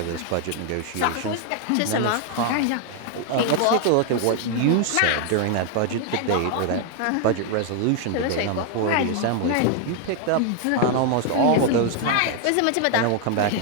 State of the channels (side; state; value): both; different; correlation 0.00